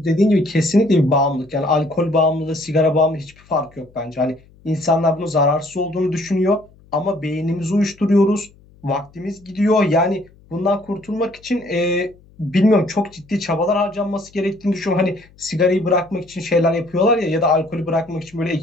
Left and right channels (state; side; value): noise; left; hum, 28 dB below the sound